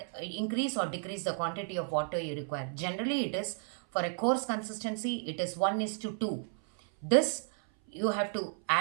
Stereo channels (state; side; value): silent; left; 56 dB below the other